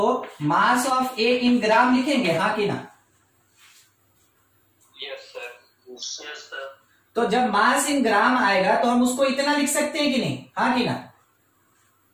मास ऑफ ए इन ग्राम लिखेंगे, हाँ कि ना। Yes sir. तो जब मास इन ग्राम आएगा तो हम उसको इतना लिख सकते हैं कि नहीं, हाँ कि ना।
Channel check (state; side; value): identical; both; correlation 1.00